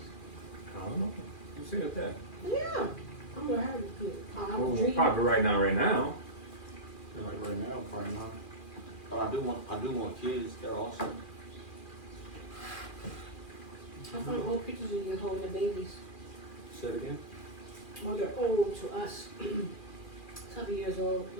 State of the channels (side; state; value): right; late; 2.4 ms